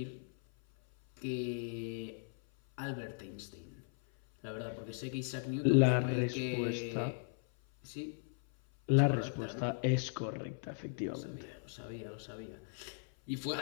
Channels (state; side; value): silent; right; 53 dB below the other